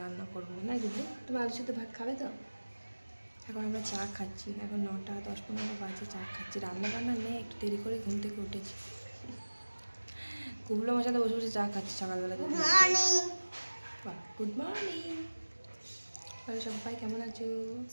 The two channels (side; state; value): both; inverted; correlation -1.00